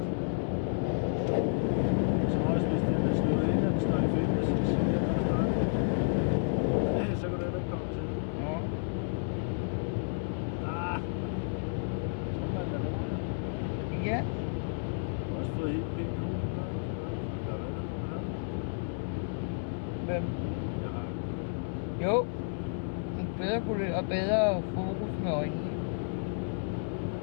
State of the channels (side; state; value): right; silent; 57 dB below the other